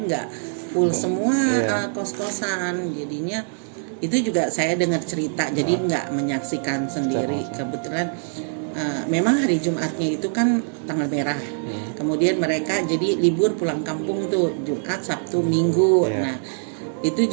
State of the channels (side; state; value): left; silent; 63 dB below the other